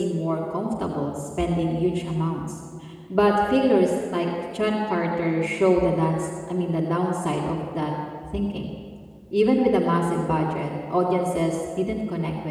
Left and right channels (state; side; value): identical; both; correlation 1.00